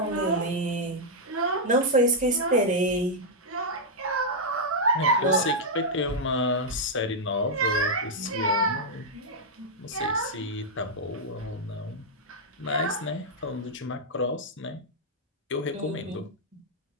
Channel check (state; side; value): normal; both; correlation -0.04